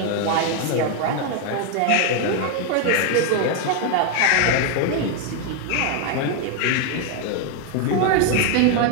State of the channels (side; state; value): both; different; correlation 0.01